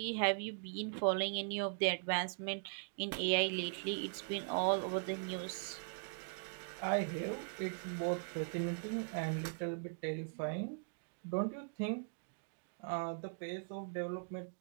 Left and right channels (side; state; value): left; silent; digital silence